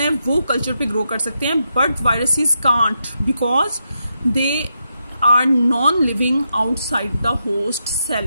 वो कल्चर पे ग्रो कर सकते हैं, but viruses can't because they are non living outside the host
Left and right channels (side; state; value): both; inverted; correlation -0.84